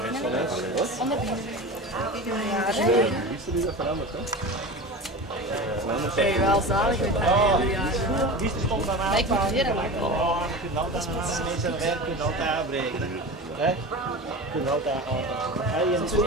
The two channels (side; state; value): both; normal; correlation 0.30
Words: Onder beginnen. Is dat veranderd, hè? Ben je wel zalig met dat? Die stond dan aan. Maar ik moet weer lang. Oh, je kunt altijd mensen werk kunnen altijd afbreken. Hè? Je kunt altijd afbreken. Als je niet zo